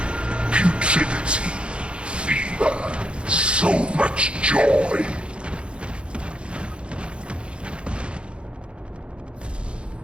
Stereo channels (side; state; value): left; late; 0.057 ms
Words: putridity, fever, so much joy.